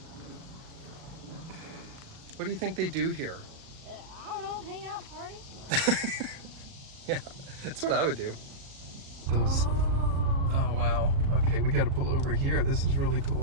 What do you think they do here? I don't know, hang out, party. Yeah, that's what I would do. Oh, wow. Okay, we got to pull over here. This is really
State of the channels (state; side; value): late; left; 37 ms